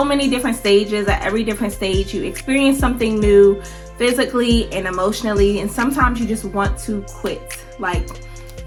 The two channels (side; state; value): both; identical; correlation 1.00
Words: many different stages. At every different stage, you experience something new physically and emotionally. And sometimes you just want to quit.